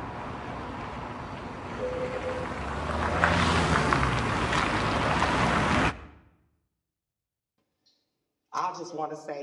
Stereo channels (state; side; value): identical; both; correlation 1.00